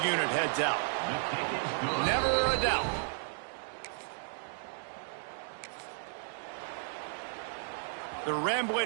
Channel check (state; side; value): silent; left; 55 dB below the other